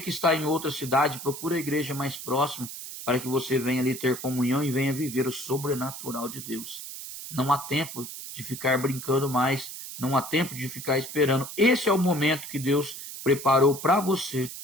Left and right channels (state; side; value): noise; right; hiss, 10 dB below the sound